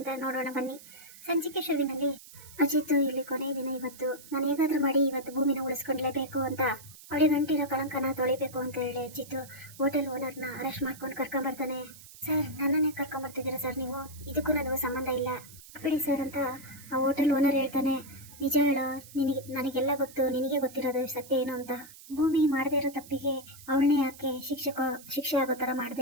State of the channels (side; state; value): right; noise; hiss, 19 dB below the sound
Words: ನೋಡೋಣ ಬನ್ನಿ. ಸಂಚಿಕೆ ಶುರುವಿನಲ್ಲಿ ಅಜಿತ್ ಇಲ್ಲಿ ಕೊನೆಯ ದಿನ, ಇವತ್ತು ನಾನು ಹೇಗಾದ್ರೂ ಮಾಡಿ ಇವತ್ತು ಭೂಮಿನ ಉಳಿಸ್ಕೊಂಡ್ಲೇಬೇಕು ಅಂತ, ಅವಳಿಗೆ ಗಂಟಿರೋ ಕಳಂಕನ ತೊಳಿಬೇಕು ಅಂತ ಹೇಳಿ ಅಜಿತ್ ಹೋಟೆಲ್ ಓನರ್ನ ಅರೆಸ್ಟ್ ಮಾಡ್ಕೊಂಡು ಕರ್ಕೊಂಬರ್ತಾನೆ. ಸರ್, ನನ್ನನ್ನೇ ಕರ್ಕೊಂಬರ್ತಿದ್ದೀರಾ ಸರ್ ನೀವು? ಇದಕ್ಕೂ ನನಗೂ ಸಂಬಂಧ ಇಲ್ಲ ಬಿಡಿ ಸರ್ ಅಂತ ಆ ಹೋಟೆಲ್ ಓನರ್ ಹೇಳ್ತಾನೆ. ನಿಜ ಹೇಳೋ, ನನಗೆಲ್ಲ ಗೊತ್ತು, ನಿನಗೆ ಗೊತ್ತಿರೋದು ಸತ್ಯ ಏನು ಅಂತ. ಭೂಮಿ ಮಾಡದೇ ಇರೋ ತಪ್ಪಿಗೆ ಅವಳನ್ನೇ ಯಾಕೆ ಶಿಕ್ಷೆ ಆಗೋ ತರ